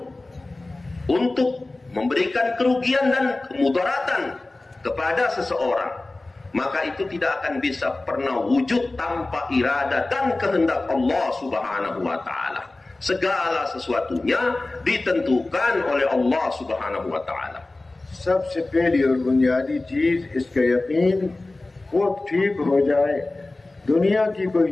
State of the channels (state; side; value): quieter; right; 3.0 dB